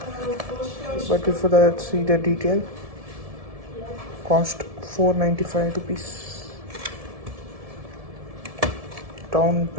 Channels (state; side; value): late; left; 1.7 ms